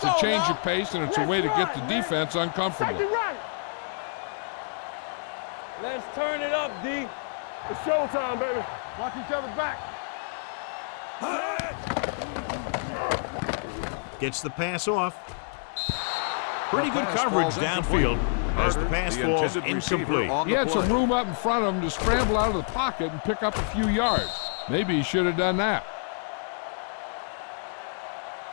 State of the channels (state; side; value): silent; right; digital silence